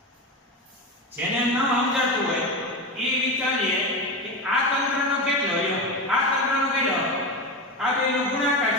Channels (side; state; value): both; normal; correlation 0.20